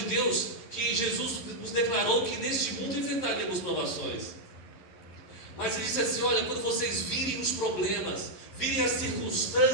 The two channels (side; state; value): right; late; 11 ms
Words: que Jesus nos declarou que neste mundo enfrentaríamos provações. Mas ele disse assim: olha, quando vocês virem os problemas, virem as